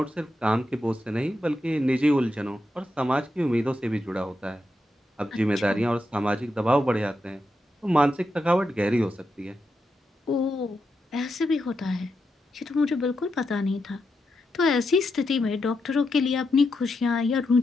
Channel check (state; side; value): normal; both; correlation 0.85